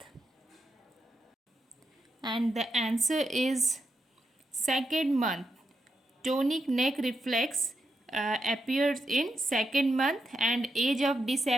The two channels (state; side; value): normal; both; correlation 0.84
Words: And the answer is second month. Tonic neck reflex appears in second month, and age of